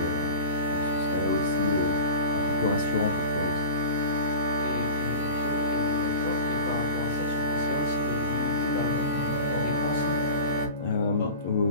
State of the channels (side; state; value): both; inverted; correlation -0.33